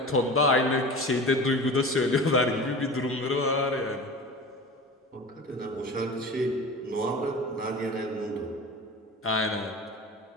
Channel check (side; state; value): both; normal; correlation 0.34